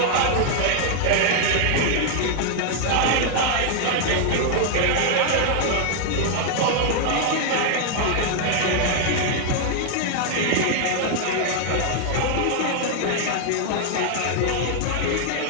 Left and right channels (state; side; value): different; both; correlation 0.00